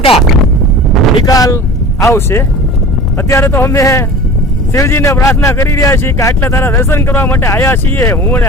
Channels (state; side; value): normal; both; correlation 0.38